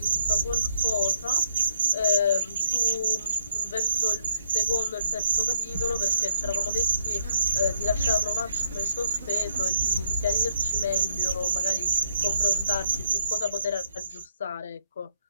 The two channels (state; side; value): inverted; both; correlation -0.70